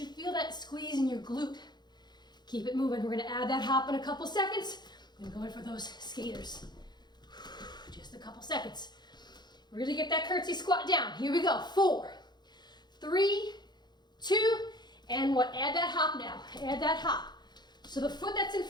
feel that squeeze in your glute. Keep it moving. We're gonna add that hop in a couple seconds. We're gonna go in for those skaters. Just a couple seconds. Really get that curtsy squat down. Here we go. 4, 3, 2, and 1. Add that hop now. Add that hop. So the foot that's in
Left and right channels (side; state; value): right; late; 0.21 ms